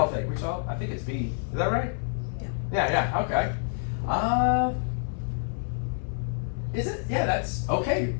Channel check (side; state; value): right; silent; 59 dB below the other